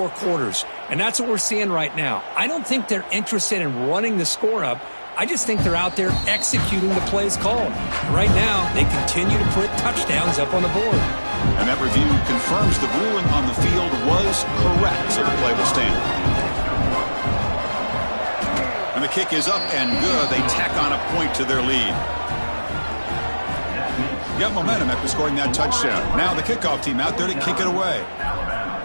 quarters, and that's what we're seeing right now. I don't think they're interested in running the score up. I just think they're out there executing the plays called. Right now, they continue to put touchdowns up on the board. And that review confirms the ruling on the field was correct, so the play will stand. And the kick is up and good. They tack on a point to their lead. Got momentum after scoring that touchdown. Now the kickoff team out there to kick it away. Alabama,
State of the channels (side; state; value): both; inverted; correlation -1.00